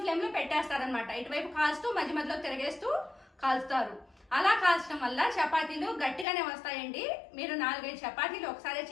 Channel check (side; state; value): right; drops out; at 6.2 s